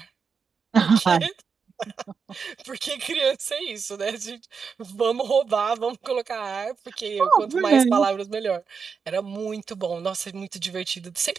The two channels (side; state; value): left; quieter; 5.7 dB